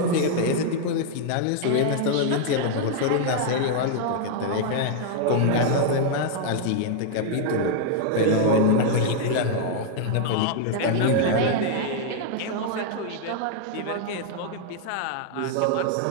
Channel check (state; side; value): different; both; correlation -0.01